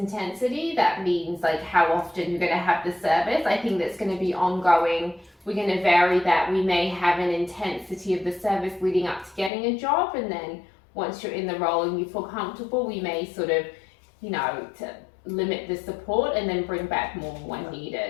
that means like how often you're going to have the service. I think that's going to be ongoing. We're going to vary that. We may have an intensity of the service leading up to getting a job, and then once you're in the role and you feel comfortable, we may sort of, to limit the support and then bring back more when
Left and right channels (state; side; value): drops out; right; at 9.5 s